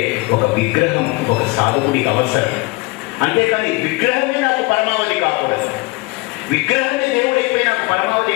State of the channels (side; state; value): right; quieter; 25.1 dB